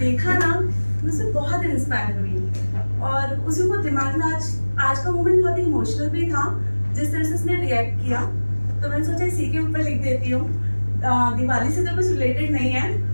ना, मुझसे बहुत इंस्पायर हुई और उसी को दिमाग में आज का मोमेंट बहुत इमोशनल भी था, जिस तरह से उसने रिएक्ट किया। तो मैंने सोचा इसी के ऊपर लिख देती हूँ। दिवाली से तो कुछ रिलेटेड नहीं है,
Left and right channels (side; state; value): both; inverted; correlation -1.00